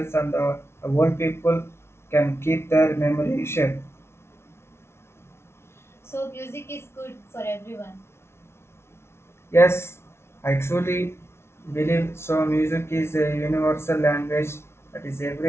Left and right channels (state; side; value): late; right; 0.12 ms